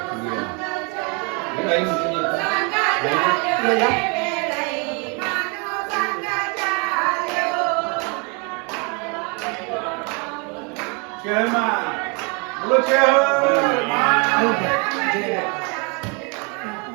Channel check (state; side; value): quieter; left; 33.2 dB